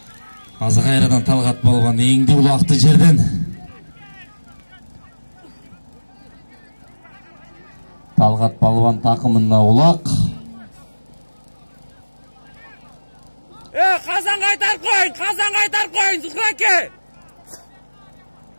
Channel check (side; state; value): both; inverted; correlation -1.00